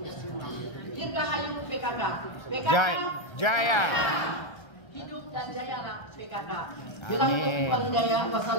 semua. Dirgahayu PKK. PKK Jaya. Hidup dan jayalah PKK.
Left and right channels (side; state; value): right; late; 1.3 ms